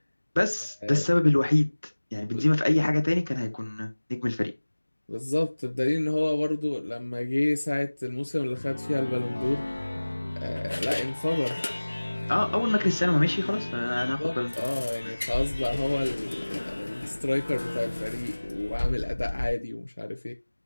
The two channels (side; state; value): both; inverted; correlation -1.00